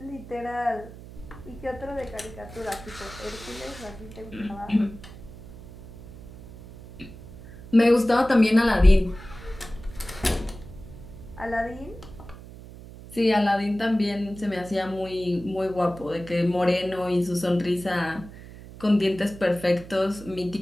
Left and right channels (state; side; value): noise; right; hum, 16 dB below the sound